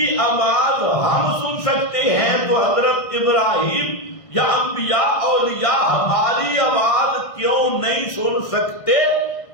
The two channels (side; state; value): right; late; 1.6 ms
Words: آواز ہم سن سکتے ہیں، تو حضرت ابراہیم یا انبیاء اولیاء ہماری آواز کیوں نہیں سن سکتے؟